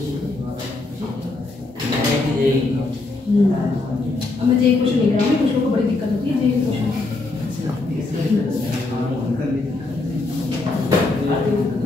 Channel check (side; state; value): right; quieter; 3.2 dB